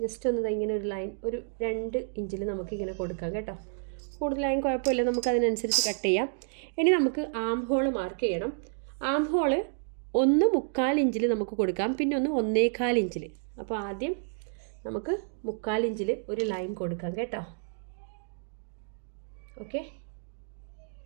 ജസ്റ്റ് ഒന്ന് ഇങ്ങനെ ഒരു ലൈൻ ഒരു 2 ഇഞ്ചിൽ നമുക്കിങ്ങനെ കൊടുക്കാം കേട്ടോ. കൂടുതലായും കുഴപ്പമില്ല, നമുക്കതിനനുസരിച്ച് കട്ട് ചെയ്യാം. ഇനി നമുക്ക് ആം ഹോൾ മാർക്ക് ചെയ്യണം. ആം ഹോള് 1.25 ഇഞ്ചിൽ നമുക്ക് കൊടുക്കാം, പിന്നെ 1.25 ഇഞ്ചിൽ. അപ്പോൾ ആദ്യം നമുക്ക് 1/4 ഇഞ്ചിൽ ഒരു ലൈൻ കൊടുക്കാം കേട്ടോ. ഓക്കെ,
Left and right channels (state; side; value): silent; left; digital silence